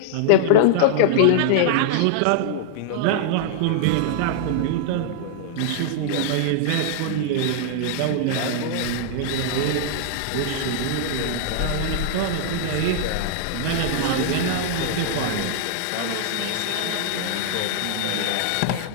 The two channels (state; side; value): different; both; correlation -0.01